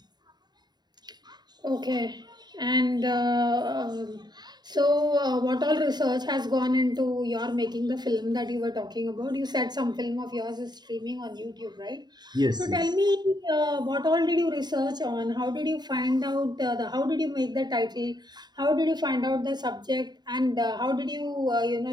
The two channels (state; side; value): late; left; 0.20 ms